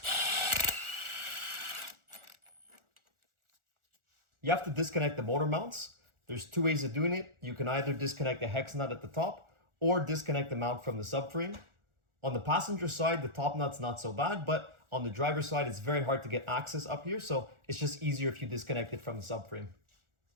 You have to disconnect the motor mounts. There's two ways of doing it. You can either disconnect the hex nut at the top or disconnect the mount from the subframe. On the passenger side, the top nut's not so bad, but on the driver's side, it's very hard to get access up here, so it's just easier if you disconnect it from the subframe.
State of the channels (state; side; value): late; left; 1.4 ms